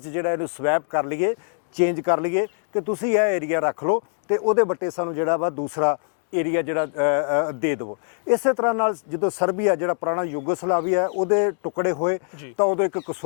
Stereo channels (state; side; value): silent; right; digital silence